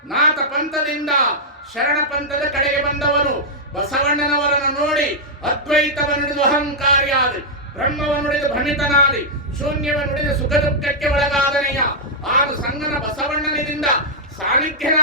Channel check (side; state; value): both; normal; correlation -0.07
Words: ನಾಥ ಪಂಥದಿಂದ ಶರಣ ಪಂಥದ ಕಡೆಗೆ ಬಂದವನು. ಬಸವಣ್ಣನವರನ್ನು ನೋಡಿ ಅದ್ವೈತವನ್ನುಡಿದು ಅಹಂಕಾರಿಯಾದ, ಬ್ರಹ್ಮವನ್ನುಡಿದು ಭ್ರಮಿತನಾದಿ, ಶೂನ್ಯವನ್ನುಡಿದು ಸುಖ ದುಃಖಕ್ಕೆ ಒಳಗಾದನೆಯ, ಆಗ ಸಂಗನ ಬಸವಣ್ಣನಿಂದ